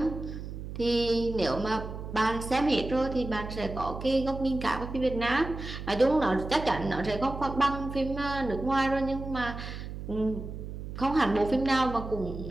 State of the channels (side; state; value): right; noise; hum, 8 dB below the sound